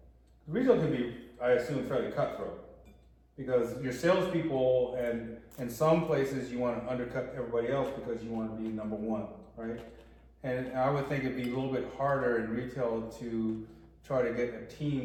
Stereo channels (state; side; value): identical; both; correlation 1.00